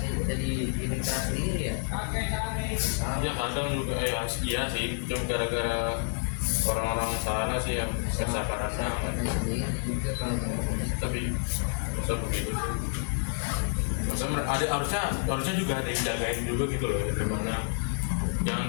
dari internal sendiri ya. Iya kadang juga ya, iya sih, cuma gara-gara orang-orang sana sih yang kesabarannya, Sendiri juga kalau nggak gitu. tapi masa begitu sih. Harusnya juga ada yang jagain juga gitu loh ya, tempatnya jangan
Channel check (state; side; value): silent; right; digital silence